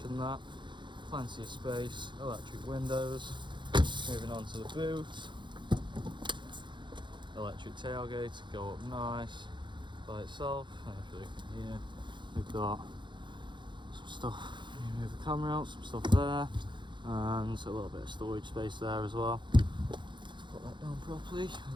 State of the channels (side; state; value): left; late; 0.23 ms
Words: that. Plenty of space, electric windows. Moving on to the boot. Electric tailgate to go up nice by itself. And if you look in here, we've got some stuff. You move the camera out, some stuff there, and a little bit of storage space there as well. Put that down properly,